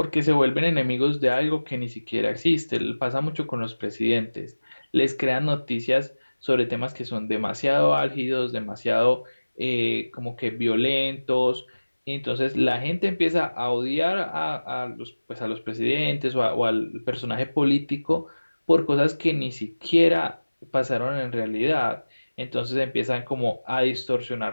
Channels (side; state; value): both; inverted; correlation -1.00